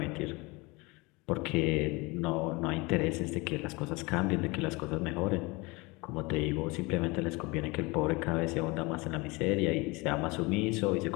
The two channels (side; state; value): right; quieter; 25.4 dB